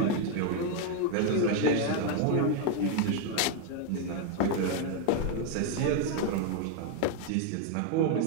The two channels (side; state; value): both; different; correlation 0.00